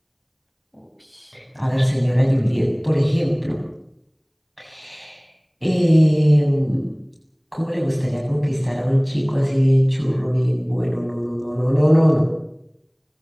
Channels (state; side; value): identical; both; correlation 1.00